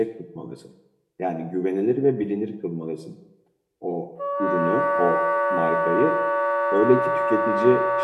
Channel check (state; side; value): identical; both; correlation 1.00